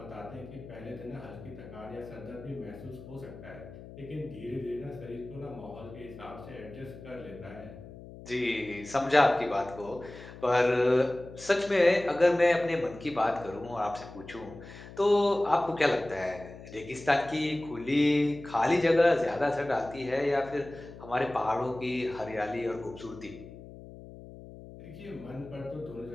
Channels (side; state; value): left; noise; hum, 16 dB below the sound